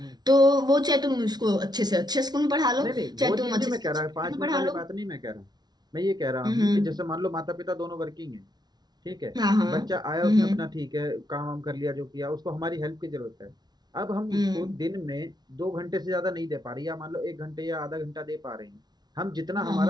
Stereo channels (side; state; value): left; late; 0.19 ms